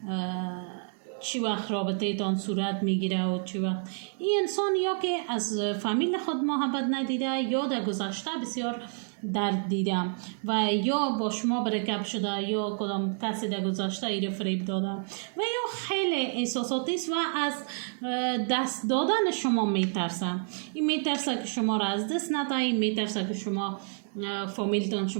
چی وقت رابطه تان صورت میگیره و چی وقت. این انسان یا که از فامیل خود محبت ندیده یا در گذشته بسیار درد دیده و یا با شما برکب شده یا کدام کسی در گذشته ایره فریب داده و یا خیلی احساساتی است و از دست دادن شما میترسه. این میترسه که شما را از دست نده، این میترسه که شما فامیلتان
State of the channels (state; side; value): silent; left; 56 dB below the other